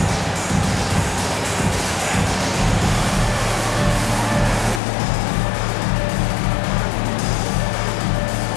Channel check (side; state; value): right; drops out; at 4.8 s